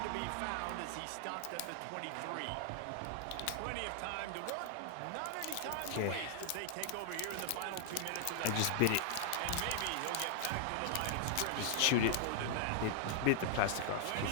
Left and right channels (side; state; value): both; different; correlation 0.00